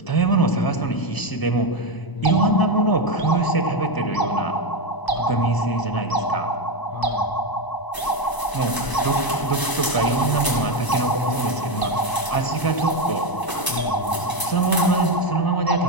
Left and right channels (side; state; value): right; late; 1.0 ms